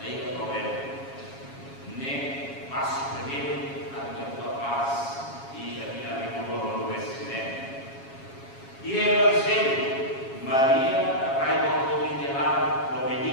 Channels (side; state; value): right; late; 7.3 ms